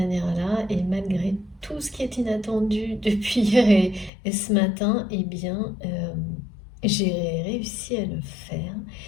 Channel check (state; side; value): drops out; right; at 4.1 s